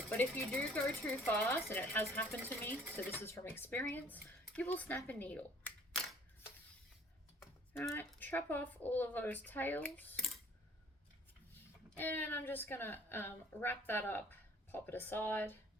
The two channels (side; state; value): both; normal; correlation 0.55